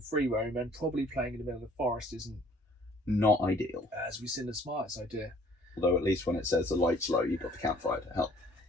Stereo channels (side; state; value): both; normal; correlation 0.57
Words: roam, and probably playing in the middle of the forest isn't, Not ideal. as we've seen, the smartest idea. Although at least when it says the light's low, you've got the campfire to help.